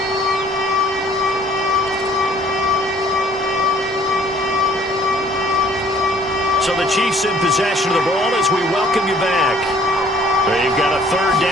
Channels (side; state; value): both; normal; correlation 0.57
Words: So the Chiefs in possession of the ball as we welcome you back. They've got a 3rd